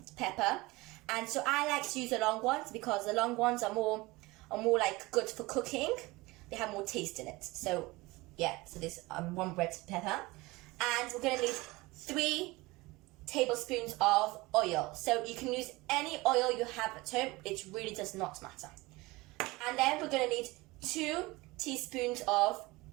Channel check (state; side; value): quieter; left; 21.8 dB